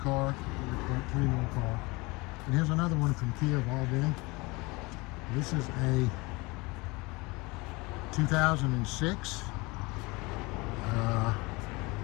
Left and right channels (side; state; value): right; quieter; 24.9 dB